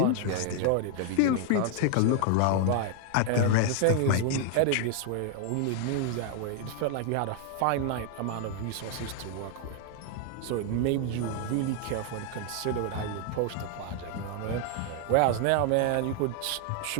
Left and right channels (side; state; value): both; different; correlation 0.00